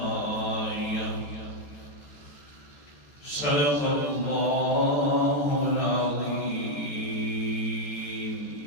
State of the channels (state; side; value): late; right; 14 ms